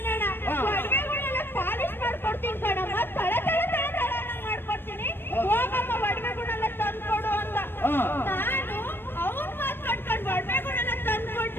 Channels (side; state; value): right; late; 0.10 ms